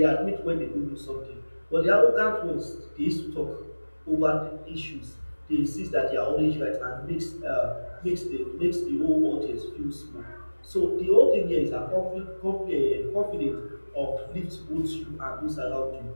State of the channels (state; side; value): inverted; both; correlation -1.00